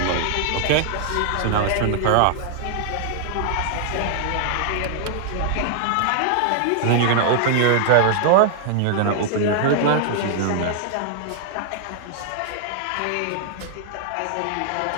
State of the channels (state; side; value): different; both; correlation 0.00